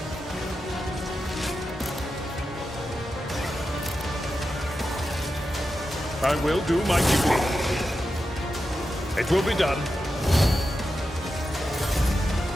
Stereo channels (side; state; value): both; normal; correlation 0.90